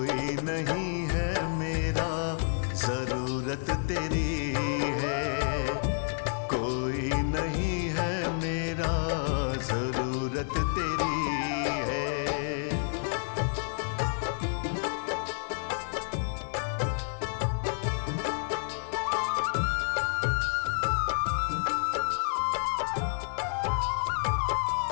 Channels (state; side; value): silent; right; digital silence